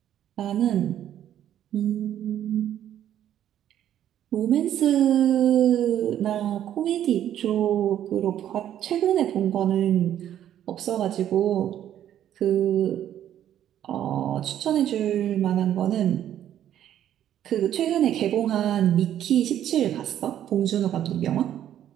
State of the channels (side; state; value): left; quieter; 11.0 dB